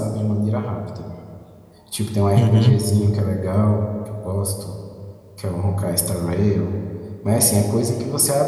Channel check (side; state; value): both; identical; correlation 1.00